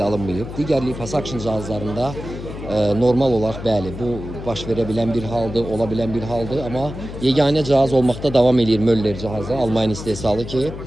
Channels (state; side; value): noise; left; hum, 10 dB below the sound